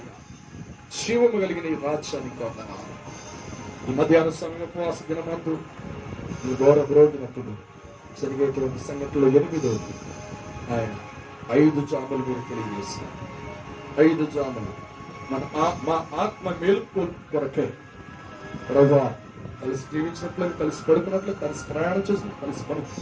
జీవము కలిగిన ఈ రాజ్యానికి వందనాలు. ఈ మధ్యాహ్న సమయం ఉపవాస దినమందు ఈ ఘోర బ్రోగినప్పుడు జరిగేటువంటి సంగతిలో 8వ ఆయన 5 జాములు మీరు తెలియజేశారు. 5 జాములు మా ఆత్మ మేలుకు కొరకే ప్రభువా, కలిసి జీవించినట్లు, కలిసి పడుకున్నట్లు, కలిసి ప్రయాణం చేసినట్లు, కలిసి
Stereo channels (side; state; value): both; identical; correlation 1.00